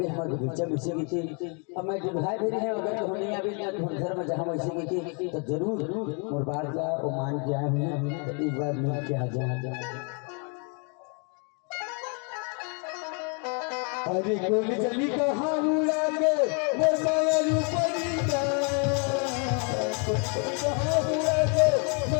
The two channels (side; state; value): right; quieter; 37.3 dB